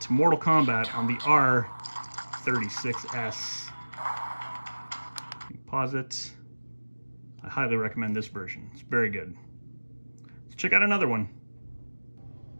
Mortal Kombat on the R36S. Pause it. I highly recommend this version. It's very good. Let's check out another one.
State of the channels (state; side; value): inverted; both; correlation -1.00